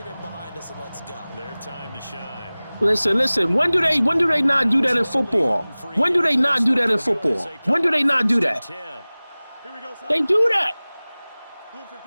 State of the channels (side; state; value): both; inverted; correlation -0.99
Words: in behind us and let's go. Their time to shine. Listen. When do they not do that in football? When do they not do that in football? When do they not do that? Here we go, son. They do that. Blue